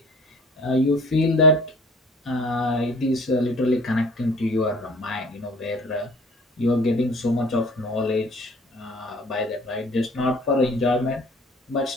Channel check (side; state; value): both; normal; correlation 0.49